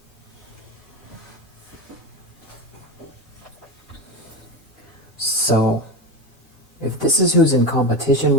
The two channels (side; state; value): both; normal; correlation 0.21